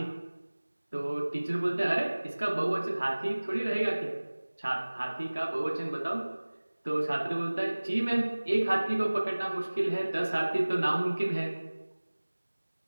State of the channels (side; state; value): both; inverted; correlation -1.00